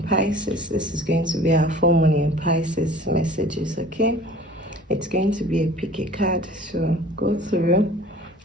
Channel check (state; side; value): normal; both; correlation 0.46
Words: Pisces. This is going to be our full moon in Pisces messages, okay? It's going to be a pick a card, so go through.